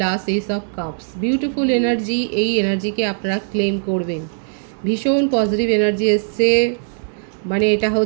S of cups, beautiful energy, এই এনার্জিকে আপনারা ক্লেম করবেন। ভীষণ পজিটিভ এনার্জি এসছে, মানে এটা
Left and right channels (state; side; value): silent; left; digital silence